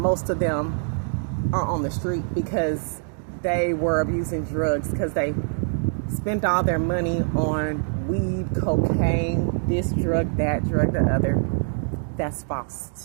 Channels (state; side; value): silent; left; digital silence